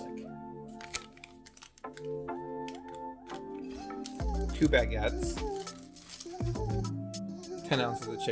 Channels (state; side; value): identical; both; correlation 1.00